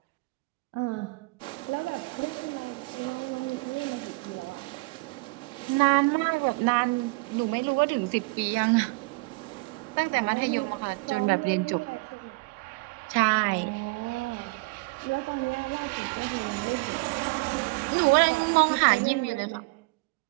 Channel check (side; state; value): left; quieter; 27.2 dB